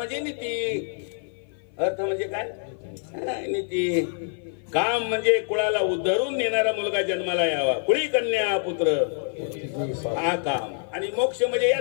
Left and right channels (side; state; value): right; silent; 55 dB below the other